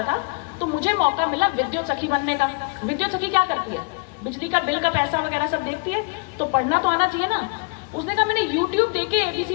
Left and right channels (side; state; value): right; quieter; 32.3 dB